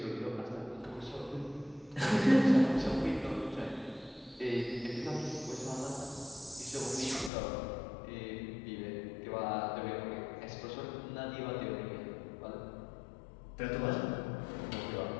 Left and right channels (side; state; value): right; drops out; at 7.3 s